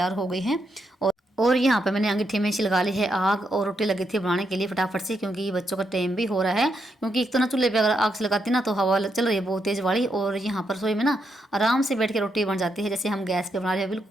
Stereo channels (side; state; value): both; normal; correlation 0.81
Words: हो गई है। और और यहाँ पे मैंने अंगीठी में लगा ली है आग और रोटी लगी थी बनाने के लिए फटाफट से, क्योंकि बच्चों का टाइम भी हो रहा है। क्योंकि एक तो ना चूल्हे पे अगर आग से लगाती ना तो हवा चल रही है बहुत तेज़ वाली, और यहाँ पर रसोई में ना आराम से बैठ के रोटी बन जाती है जैसे हम गैस पे बना रहे हैं,